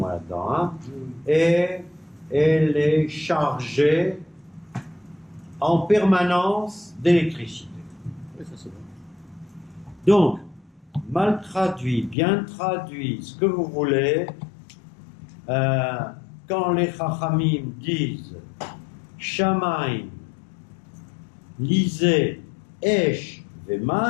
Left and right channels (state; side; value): drops out; right; at 12.2 s